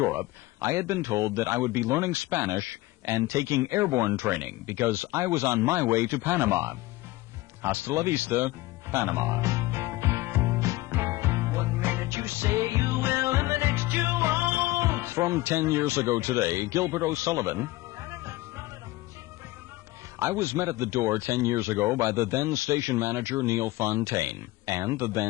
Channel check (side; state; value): right; quieter; 19.1 dB